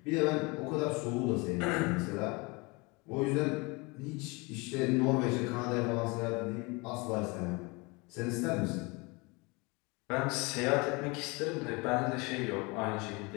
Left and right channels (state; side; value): quieter; right; 27.1 dB